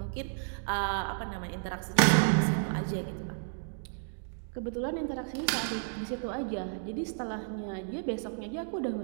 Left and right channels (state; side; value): silent; left; digital silence